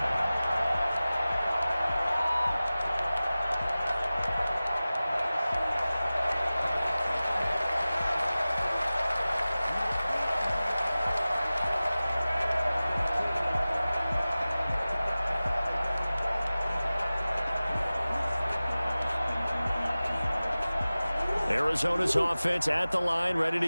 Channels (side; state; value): both; inverted; correlation -0.97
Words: Arizona's offense at the line, ready to